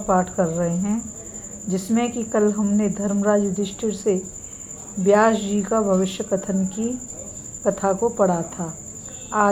कर रहे हैं, जिसमें कि कल हमने धर्मराज युधिष्ठिर से व्यास जी का भविष्य कथन की कथा को पढ़ा था।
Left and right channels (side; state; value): both; identical; correlation 1.00